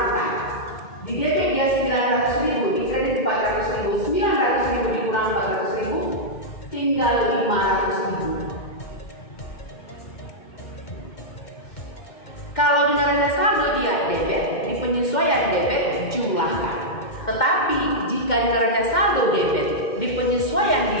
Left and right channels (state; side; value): late; right; 2.1 ms